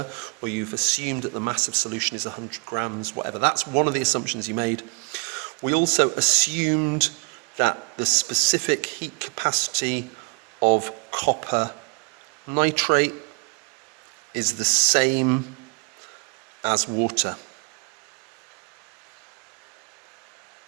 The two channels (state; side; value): quieter; left; 34.4 dB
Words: or you've assumed that the mass of solution is 100 grams, whatever. That's one of the assumptions you made. We also assumed that the specific heat capacity of copper nitrate is the same as water.